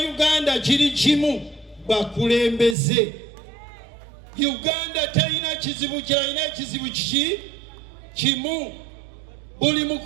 Uganda kiri kimu bakulembeze. Uganda terina kizibu kirina ekizibu kimu. Buli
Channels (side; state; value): left; drops out; at 2.8 s